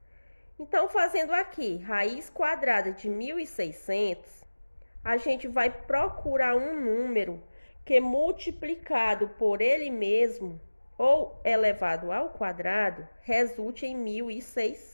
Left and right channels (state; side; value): inverted; both; correlation -1.00